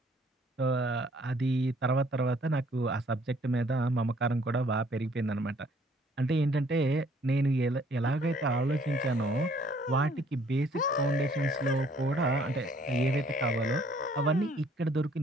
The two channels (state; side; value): normal; both; correlation 0.61